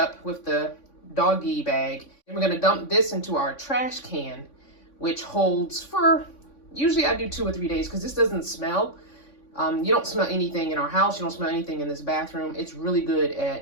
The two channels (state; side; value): late; right; 3.5 ms